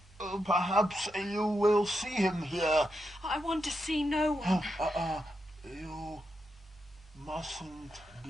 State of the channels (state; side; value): normal; both; correlation 0.85